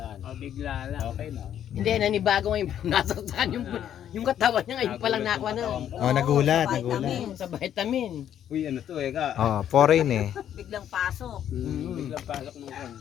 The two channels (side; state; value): right; quieter; 10.2 dB